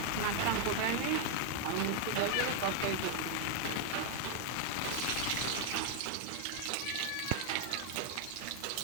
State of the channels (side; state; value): both; different; correlation 0.00